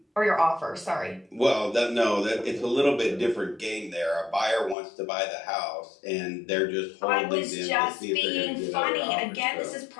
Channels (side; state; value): right; drops out; at 4.8 s